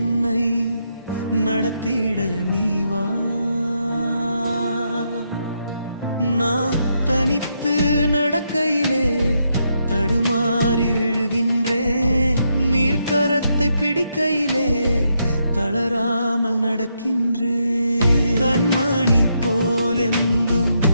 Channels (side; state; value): both; inverted; correlation -0.79